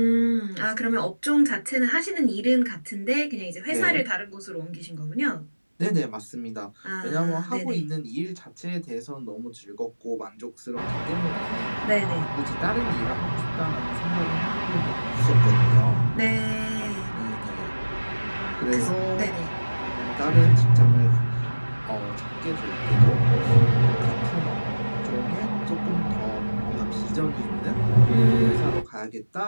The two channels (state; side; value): inverted; both; correlation -1.00